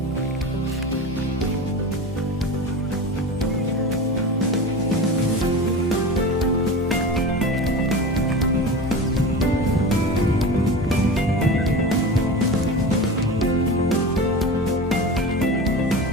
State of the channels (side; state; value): both; normal; correlation 0.29